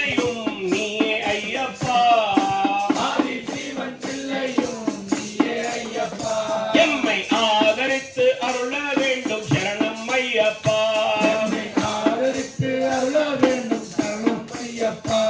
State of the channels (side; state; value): both; identical; correlation 1.00